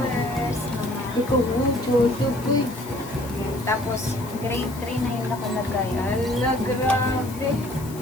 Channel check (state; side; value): noise; left; hiss, 17 dB below the sound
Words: mga... Tapos, grade 3 na yung nakalagay. Ala, grabe.